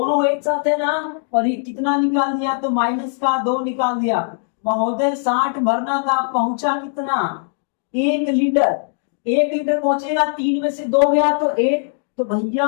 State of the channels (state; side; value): silent; right; digital silence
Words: एक साथ है ना, और ये कितना निकाल दिया तो माइनस का 2 निकाल दिया। महोदय 60 भरना था, पहुंचा कितना 1 लीटर। 1 लीटर पहुंचेगा, 3 में से 2 गया तो 1, तो भैया